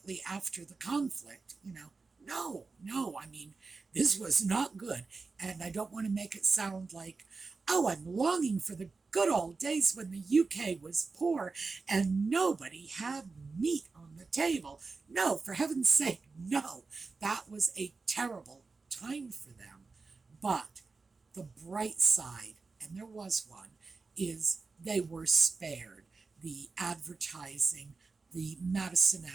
after the conflict. No, I mean, this was not good. And I don't want to make it sound like, oh, I'm longing for the good old days when the UK was poor and nobody had meat on the table. No, for heaven's sake, no. That was a terrible time for them. But the bright side, and there was one, is they were spared the advertising, the Madison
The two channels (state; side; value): quieter; left; 4.2 dB